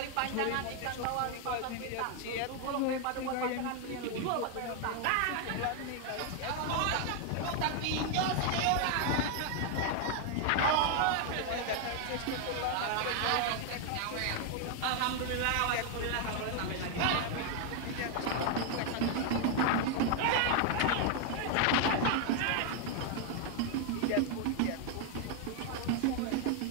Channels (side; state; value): both; different; correlation 0.00